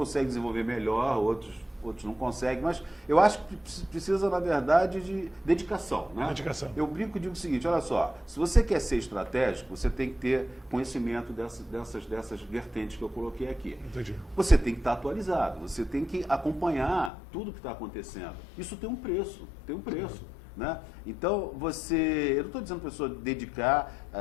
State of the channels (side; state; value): right; drops out; at 17.1 s